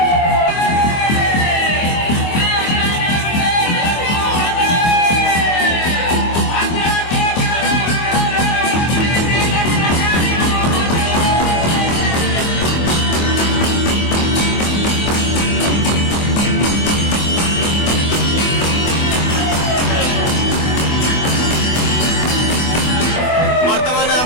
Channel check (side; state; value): right; late; 24 ms